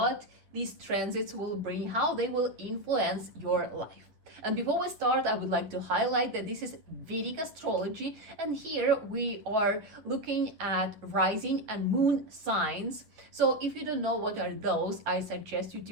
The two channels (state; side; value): late; left; 9.2 ms